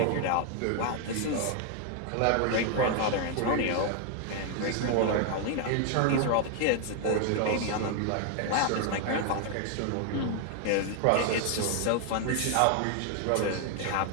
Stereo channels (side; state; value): both; different; correlation 0.00